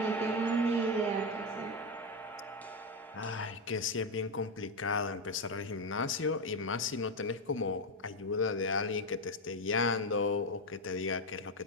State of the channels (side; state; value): both; normal; correlation 0.08